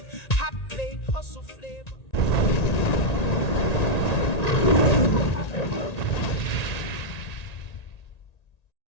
Hot plate, hustle flavor.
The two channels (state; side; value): late; right; 1.9 ms